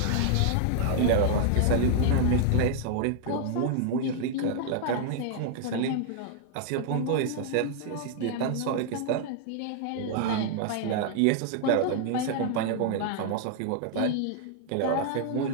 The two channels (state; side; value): different; both; correlation -0.01